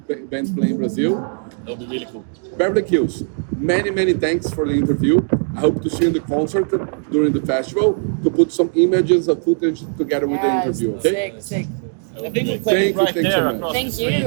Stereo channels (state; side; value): silent; left; 62 dB below the other